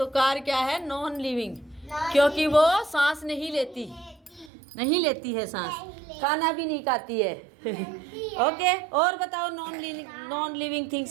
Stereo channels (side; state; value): left; drops out; at 4.5 s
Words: कार क्या है? नॉन लिविंग, क्योंकि वो सांस नहीं लेती है सांस, खाना भी नहीं खाती है। ओके, और बताओ नॉन लिविंग